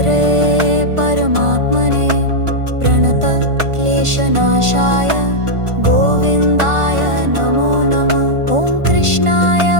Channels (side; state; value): left; late; 1.5 ms